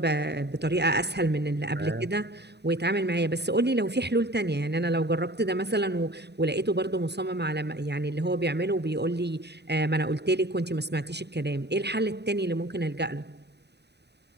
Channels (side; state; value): left; late; 0.49 ms